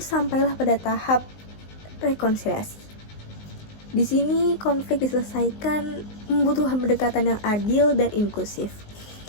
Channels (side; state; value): right; late; 19 ms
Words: sampailah pada tahap rekonsiliasi. Di sini konflik diselesaikan membutuhkan pendekatan yang adil dan inklusif.